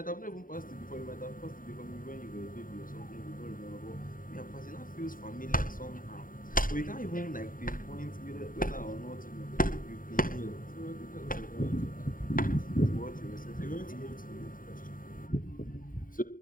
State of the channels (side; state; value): right; late; 0.40 ms